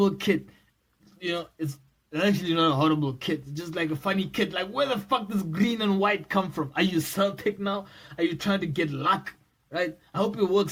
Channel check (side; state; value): both; identical; correlation 1.00